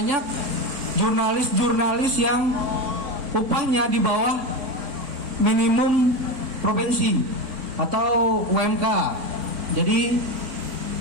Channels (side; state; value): left; late; 3.5 ms